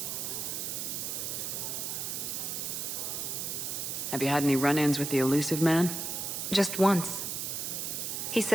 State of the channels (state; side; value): noise; right; hiss, 3 dB below the sound